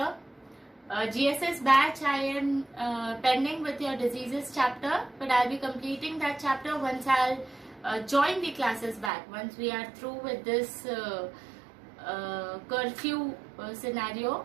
GSS batch, I am pending with your diseases chapter, but I'll be completing that chapter once I'll join the classes back. Once we are through with this curfew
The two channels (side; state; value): left; drops out; at 9.1 s